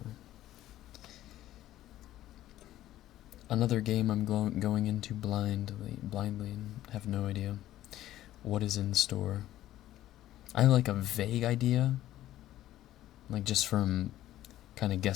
Another game I'm going into blindly, and have no idea what is in store. I have like a vague idea, like just from kind of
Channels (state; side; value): quieter; right; 13.8 dB